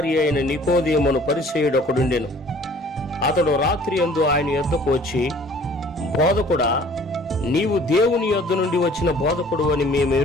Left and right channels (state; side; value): normal; both; correlation 0.53